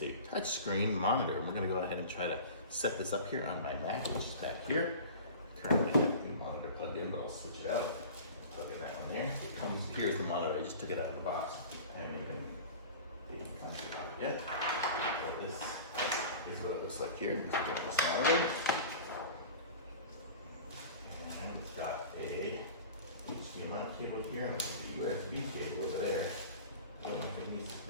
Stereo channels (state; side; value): inverted; both; correlation -0.38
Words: a touchscreen monitor. And we're gonna go ahead and try to set this up here on my Mac, which is back here. Currently have the monitor plugged in, but I'll switch it out. Plug in that one there. It comes, here's the monitor. I just took it out of the box. I haven't even come to it out yet. But this is what it looks like here. Let's get this monitor. And it's got a HDMI cable here, and the USB cable over there. I don't know if it needs